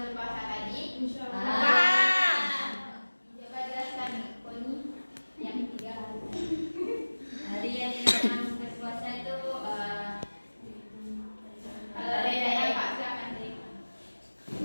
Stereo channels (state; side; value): inverted; both; correlation -1.00